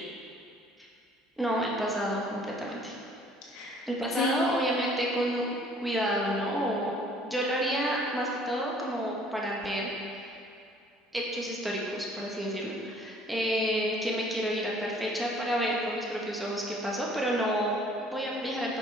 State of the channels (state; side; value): normal; both; correlation 0.56